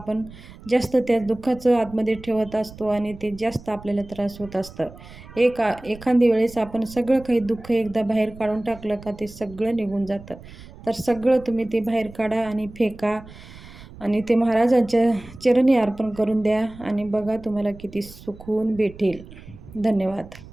जास्त त्या दुःखाचं आतमध्ये ठेवत असतो आणि ते जास्त आपल्याला त्रास होत असतं. एखादी वेळेस आपण सगळं काही दुःख एकदा बाहेर काढून टाकलं का ते सगळं निघून जातं. तर सगळं तुम्ही ते बाहेर काढा आणि फेका. आणि ते महाराजांच्या चरणी अर्पण करून द्या आणि बघा तुम्हाला किती सुकून भेटेल. धन्यवाद.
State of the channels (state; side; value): noise; right; rumble, 18 dB below the sound